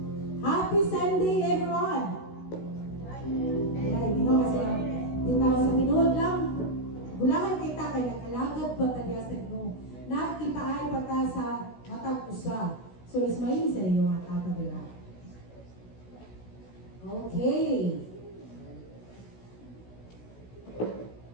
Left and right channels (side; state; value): right; late; 16 ms